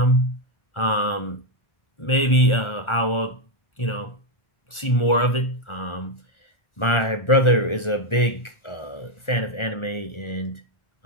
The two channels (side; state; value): right; late; 1.4 ms